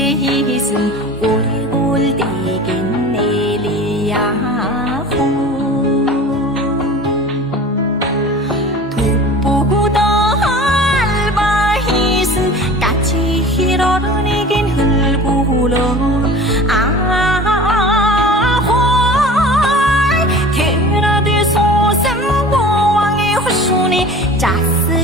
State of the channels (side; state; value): both; normal; correlation 0.39